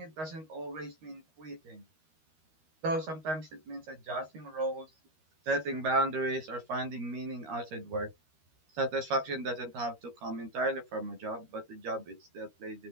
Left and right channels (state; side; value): late; left; 13 ms